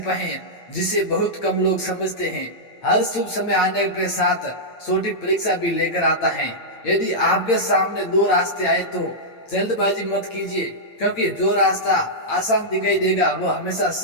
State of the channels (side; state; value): right; late; 8.8 ms